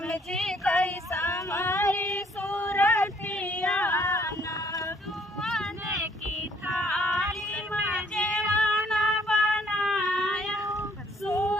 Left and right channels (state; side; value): normal; both; correlation 0.64